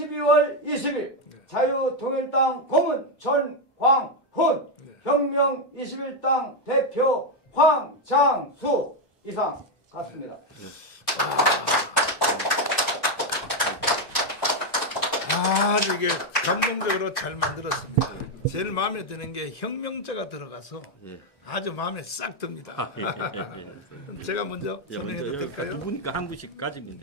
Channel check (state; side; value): late; right; 1.1 ms